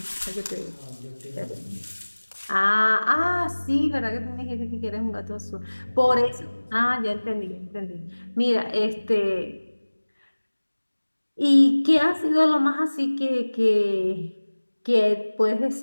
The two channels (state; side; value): inverted; both; correlation -1.00